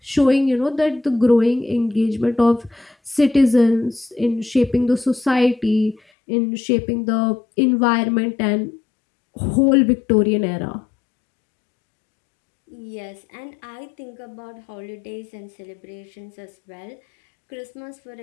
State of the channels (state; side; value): drops out; right; at 6.0 s